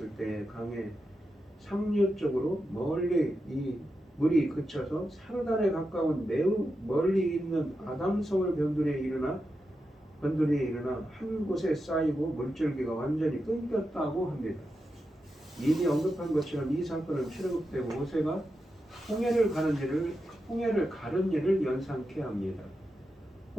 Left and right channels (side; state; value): both; normal; correlation 0.88